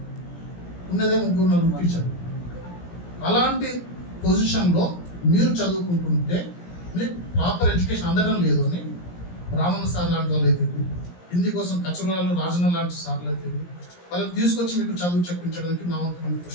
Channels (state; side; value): late; right; 17 ms